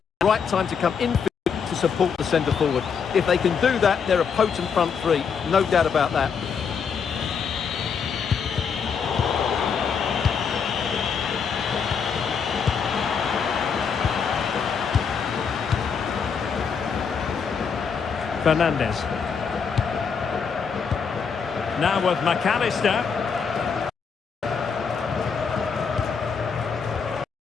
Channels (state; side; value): quieter; right; 6.3 dB